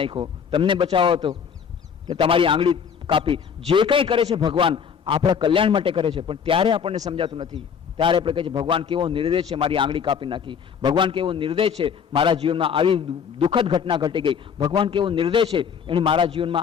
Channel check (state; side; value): quieter; right; 7.0 dB